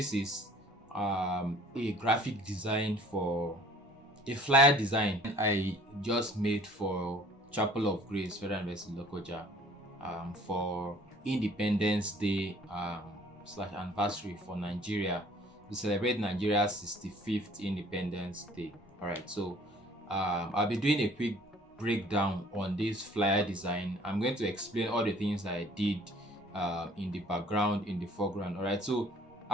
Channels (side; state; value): both; normal; correlation 0.54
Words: is a graphic design for a flyer design I just made for Chapel of Grace Federal University Lokoja for Independence Day slash anniversary for Nigeria to celebrate Nigeria's 65th Independence Day. All right, so I'll be doing a quick breakdown on this flyer design. I'm going to explain all the things that I did in the background, in the foreground. All right, so